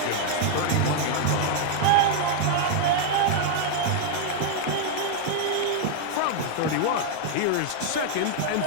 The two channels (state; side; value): different; both; correlation 0.00